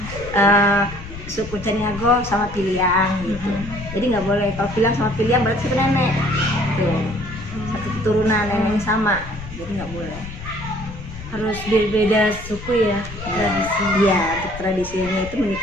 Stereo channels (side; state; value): left; noise; rumble, 12 dB below the sound